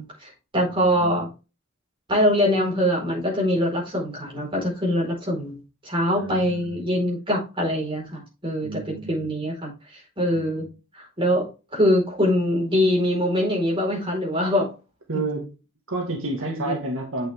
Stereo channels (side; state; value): both; normal; correlation 0.44